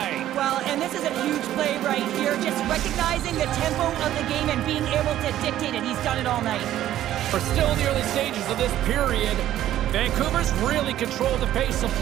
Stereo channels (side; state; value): left; quieter; 12.7 dB